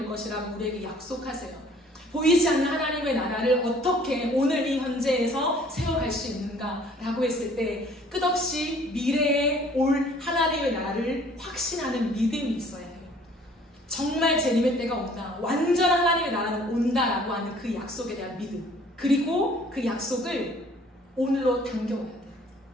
것이라고 우리에게 약속하세요. 보이지 않는 하나님의 나라를 어떻게 오늘 이 현재에서 세워갈 수 있는가라고 했을 때 끝없이 미래에 올 하나님의 나라를 확신하는 믿음이 있어야 해요. 정말 재림의 때가 온다, 완전한 하나님의 나라는 온다라고 하는 그 약속에 대한 믿음, 그리고 그 약속을 오늘로 당겨와야 돼요.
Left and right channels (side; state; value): both; normal; correlation 0.55